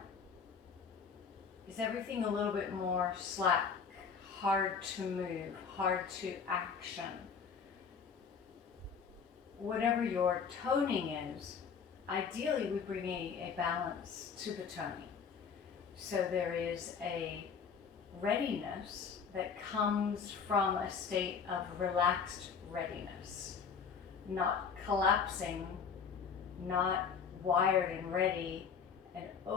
is everything a little bit more slack, hard to move, hard to action? Whatever your toning is, ideally we bring a balance to the toning. So there is a readiness that comes from a state of relaxed readiness, not collapsing, not wired and ready and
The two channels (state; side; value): quieter; right; 6.3 dB